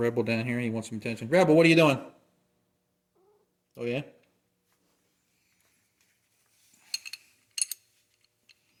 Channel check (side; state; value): both; identical; correlation 1.00